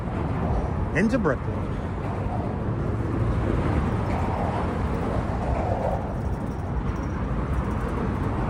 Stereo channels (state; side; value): identical; both; correlation 1.00